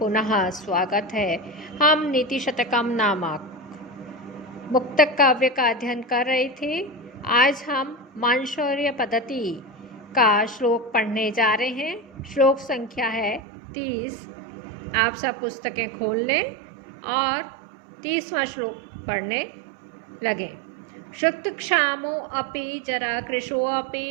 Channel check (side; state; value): left; drops out; at 13.4 s